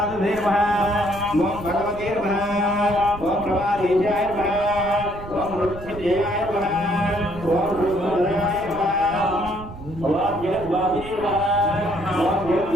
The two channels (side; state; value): right; noise; rumble, 14 dB below the sound